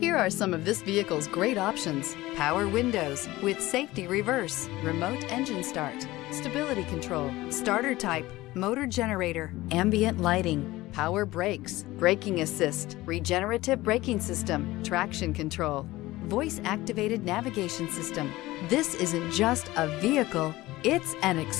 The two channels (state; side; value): quieter; right; 18.2 dB